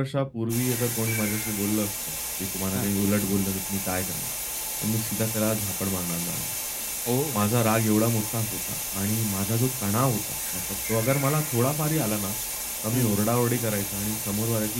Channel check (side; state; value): both; identical; correlation 1.00